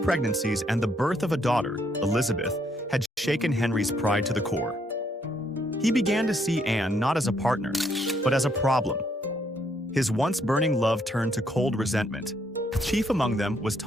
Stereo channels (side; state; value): both; normal; correlation 0.72